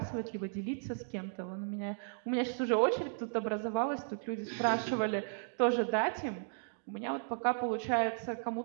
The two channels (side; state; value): left; silent; digital silence